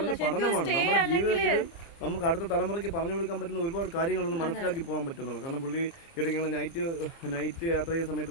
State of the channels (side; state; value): right; late; 29 ms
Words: പഠനമാണ്. നമ്മുടെ ജീവിതത്തിൽ നമുക്ക് അടുത്ത തലമുറയ്ക്ക് പറഞ്ഞു കൊടുക്കാൻ പറ്റുന്ന ഒരുപാട് കാര്യങ്ങളൊന്നും മനസ്സിലാക്കി പോകാൻ പറ്റുന്നുള്ളൂ. കാരണം പുള്ളി ഇടയ്ക്ക് നൈറ്റ് യാത്ര ചെയ്യുന്ന